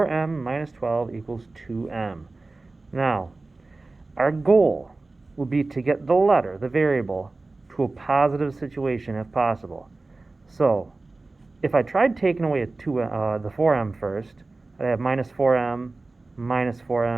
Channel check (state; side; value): quieter; left; 3.3 dB